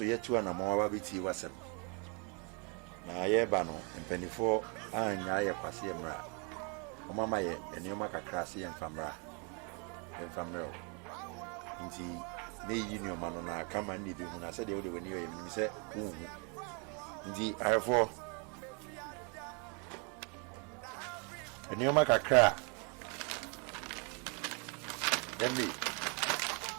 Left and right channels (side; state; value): left; quieter; 35.1 dB